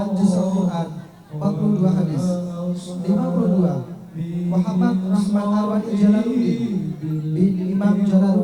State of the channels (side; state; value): both; identical; correlation 1.00